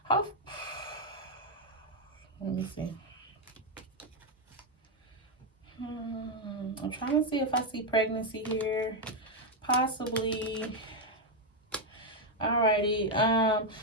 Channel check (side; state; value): both; normal; correlation 0.03